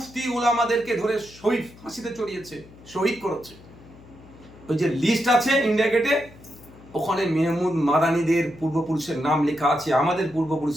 উলামাদেরকে ধরে শহীদ ফাঁসিতে চড়িয়েছে, শহীদ করেছে। ওই যে লিস্ট আছে ইন্ডিয়া গেটে, ওখানে মেহমুদ মাদানীদের পূর্বপুরুষের নাম লেখা আছে, আমাদের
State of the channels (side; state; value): left; noise; hum, 22 dB below the sound